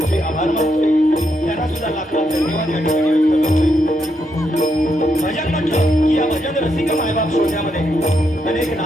आभार मानतोय त्यांना सुद्धा लाख लाख धन्यवाद या ठिकाणी व्यक्त करतोय। भजन म्हटलं की या भजन रसिक मायबाप श्रोत्यामध्ये अनेक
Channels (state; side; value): normal; both; correlation 0.79